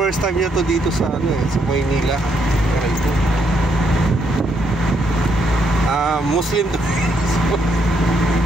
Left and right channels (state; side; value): normal; both; correlation 0.75